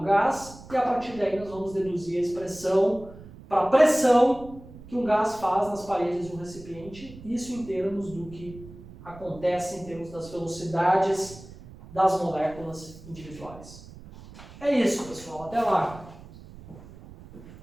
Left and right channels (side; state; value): right; noise; rumble, 18 dB below the sound